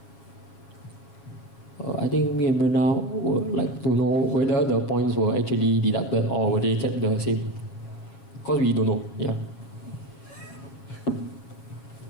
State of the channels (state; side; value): late; right; 7.1 ms